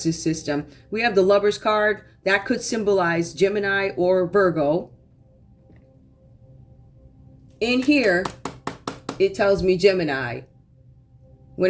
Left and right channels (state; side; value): identical; both; correlation 1.00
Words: system. We have the Lovers card. That could symbolize Gemini or Virgo. In here, it tells me Gemini.